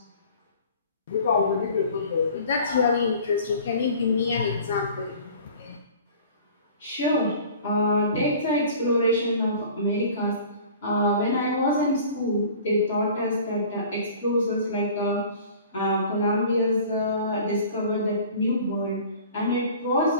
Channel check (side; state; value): both; inverted; correlation -0.45